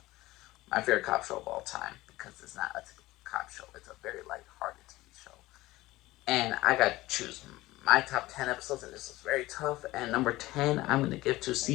My favorite cop show of all time, because it's not a typical cop show. It's a very light-hearted TV show. And I got to choose my top 10 episodes, and this is very tough. And number 10, I'm going to give to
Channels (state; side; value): quieter; right; 18.2 dB